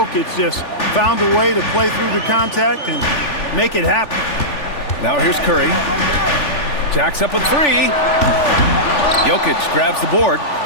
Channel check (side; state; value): right; late; 3.4 ms